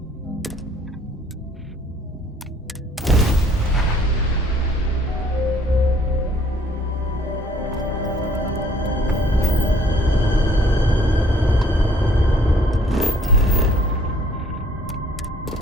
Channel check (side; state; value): both; normal; correlation 0.59